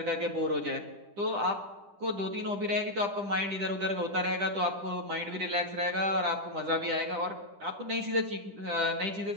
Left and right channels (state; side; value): late; left; 10 ms